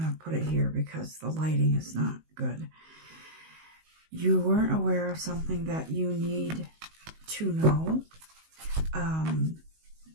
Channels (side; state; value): left; late; 19 ms